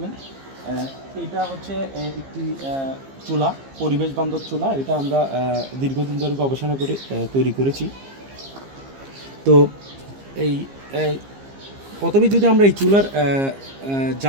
এটা হচ্ছে একটি চুলা, পরিবেশ বান্ধব চুলা। এটা আমরা দীর্ঘদিন ধরে গবেষণা করে তৈরি করেছি। তো এই প্রথমে যদি আমরা এই চুলার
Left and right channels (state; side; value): late; left; 15 ms